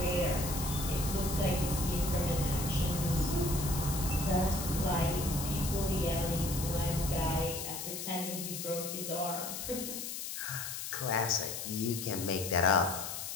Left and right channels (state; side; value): noise; left; hiss, 6 dB below the sound